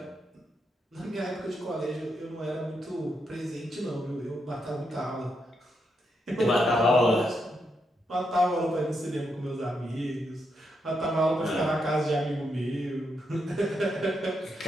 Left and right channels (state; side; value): normal; both; correlation 0.81